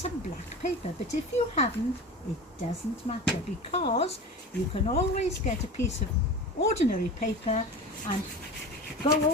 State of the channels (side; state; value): both; normal; correlation 0.31